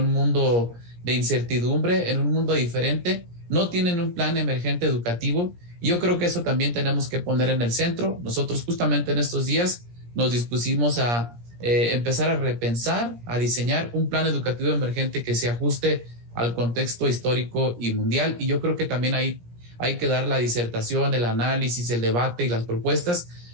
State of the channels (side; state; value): left; late; 17 ms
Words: mundo de incertidumbre, en un mundo diferente. No tienen un plan emergente educativo, y yo creo que eso también tenemos que poner en el centro. Nosotros justamente en estos días nos dispusimos a empezar a repensar, a diseñar un plan educativo emergente que se ajuste al contexto histórico y mundial, y yo creo que también hay que dar la disertación, el análisis, el debate y las propuestas,